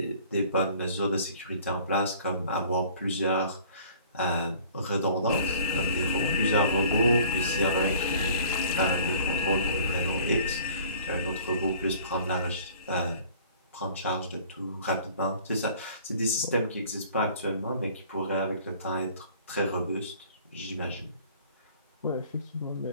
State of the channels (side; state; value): both; inverted; correlation -0.50